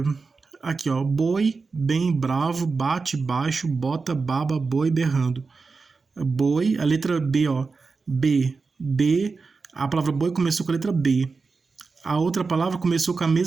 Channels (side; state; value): left; quieter; 4.4 dB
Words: Aqui, ó. Boi, bem, bravo, bate, baixo, bota, baba, boi, berrando. Boi, a letra B, ó. B. A palavra boi começou com a letra B. A outra palavra começou com a